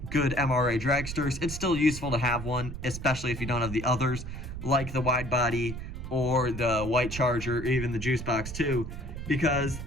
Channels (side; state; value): right; noise; rumble, 8 dB below the sound